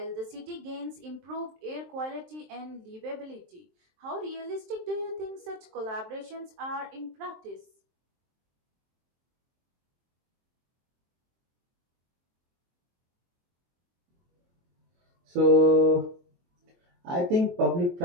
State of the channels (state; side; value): late; left; 23 ms